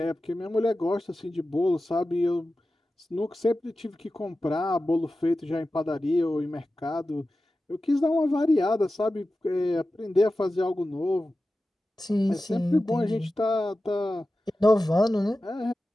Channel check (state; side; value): normal; both; correlation 0.94